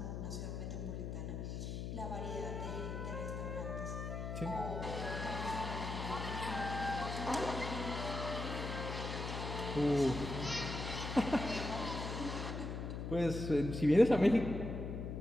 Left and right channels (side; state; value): left; noise; hum, 4 dB below the sound